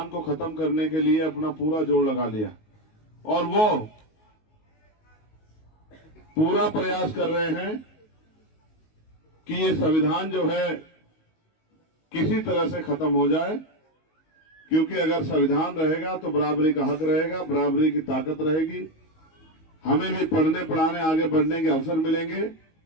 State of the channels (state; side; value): late; right; 19 ms